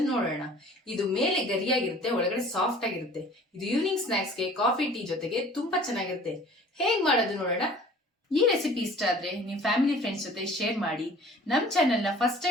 ನೋಡೋಣ. ಇದು ಮೇಲೆ ಗರಿಯಾಗಿರುತ್ತೆ, ಒಳಗಡೆ ಸಾಫ್ಟ್ ಆಗಿರುತ್ತೆ. ಇದು ಈವ್ನಿಂಗ್ ಸ್ನಾಕ್ಸ್ಗೆ ಕಾಫಿ ಟೀ ಜೊತೆಗೆ ತುಂಬಾ ಚೆನ್ನಾಗಿರುತ್ತೆ. ಹೇಗ್ ಮಾಡೋದು ನೋಡೋಣ. ಈ ರೆಸಿಪಿ ಇಷ್ಟ ಆದ್ರೆ ನಿಮ್ ಫ್ಯಾಮಿಲಿ ಫ್ರೆಂಡ್ಸ್ ಜೊತೆ ಶೇರ್ ಮಾಡಿ. ನಮ್ ಚಾನೆಲ್ ನ ಫಸ್ಟ್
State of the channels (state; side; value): normal; both; correlation 0.49